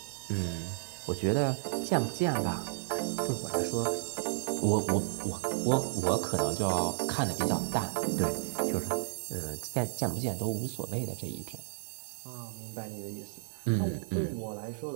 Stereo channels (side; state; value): left; silent; 56 dB below the other